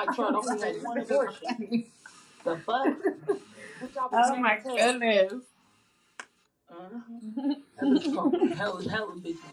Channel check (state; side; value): identical; both; correlation 1.00